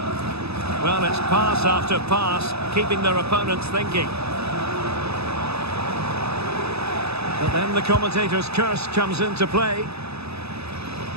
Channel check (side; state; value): left; late; 0.79 ms